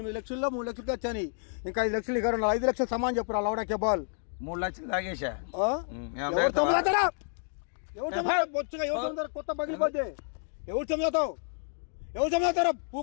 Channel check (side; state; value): right; silent; 58 dB below the other